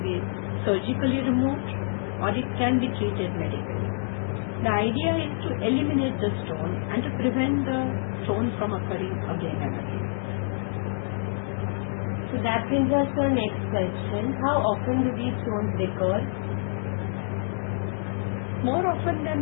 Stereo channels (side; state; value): right; silent; digital silence